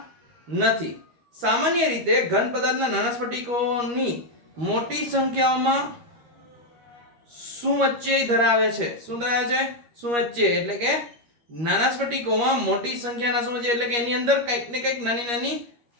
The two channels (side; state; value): left; late; 13 ms